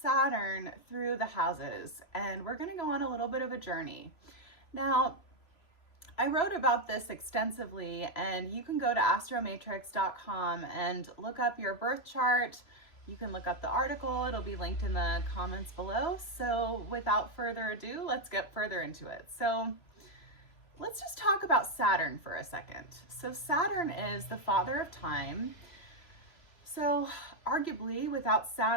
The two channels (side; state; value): right; late; 3.0 ms